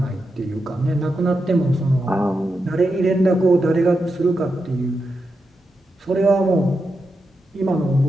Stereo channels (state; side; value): normal; both; correlation 0.87